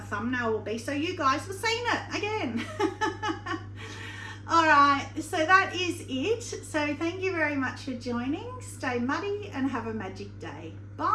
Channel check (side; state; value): both; identical; correlation 1.00